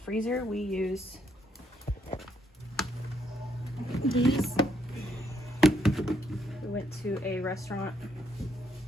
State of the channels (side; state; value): both; normal; correlation 0.74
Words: We use these. We went to a restaurant